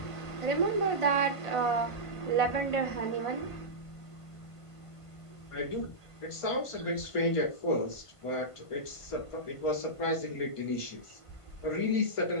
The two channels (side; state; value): right; late; 1.5 ms